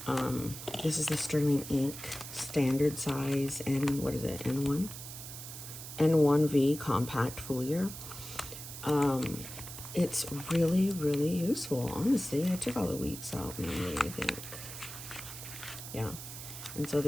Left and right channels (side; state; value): right; noise; hiss, 11 dB below the sound